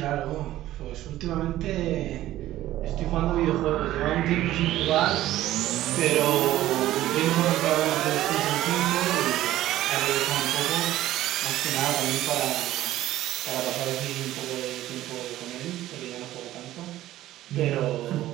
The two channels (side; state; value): left; quieter; 14.5 dB